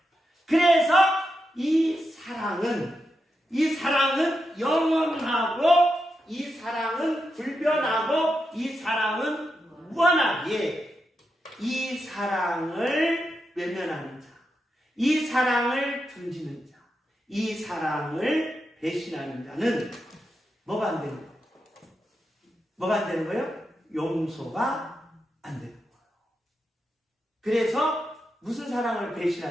그래서 이 사랑은 영원하고 이 사랑은 불변하고 이 사랑은 무한하게 이 사랑을 외면하는 자, 이 사랑을 등지는 자, 이 사랑을 배신하는 자는 뭐가 안 되는 거예요? 뭐가 안 되는 거예요? 용서가 안 되는 거예요. 그래서 무슨 사랑을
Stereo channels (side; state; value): both; normal; correlation 0.86